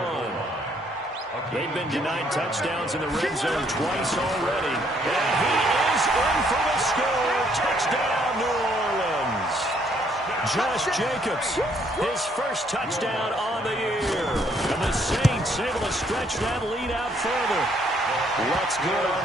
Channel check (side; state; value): both; normal; correlation 0.68